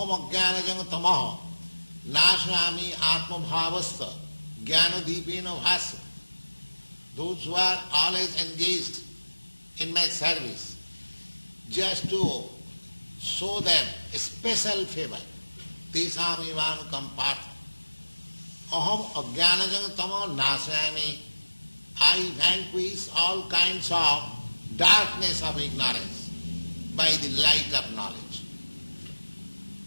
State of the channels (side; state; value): both; inverted; correlation -1.00